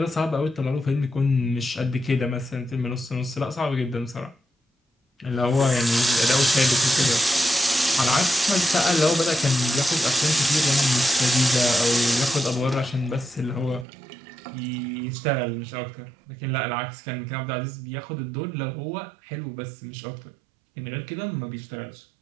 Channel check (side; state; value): left; drops out; at 13.9 s